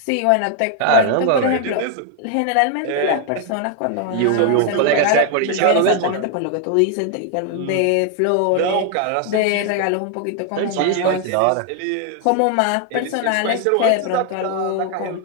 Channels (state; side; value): different; both; correlation 0.00